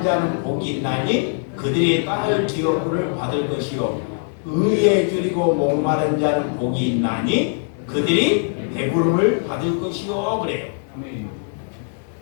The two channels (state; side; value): silent; right; 63 dB below the other